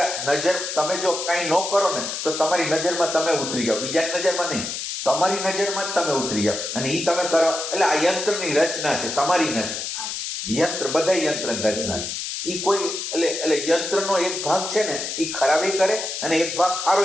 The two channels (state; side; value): noise; left; hiss, 5 dB below the sound